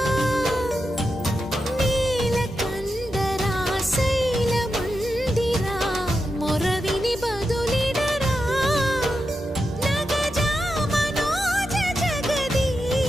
నీలకందరా శైల మందిరా మొరవిని బదులిడరా నగజా మనోజ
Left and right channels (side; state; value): both; normal; correlation 0.88